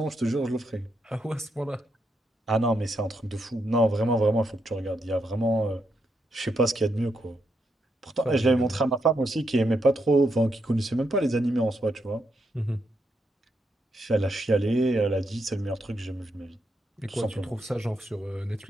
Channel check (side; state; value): both; normal; correlation 0.81